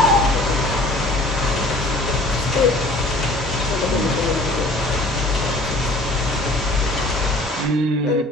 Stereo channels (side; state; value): both; normal; correlation 0.50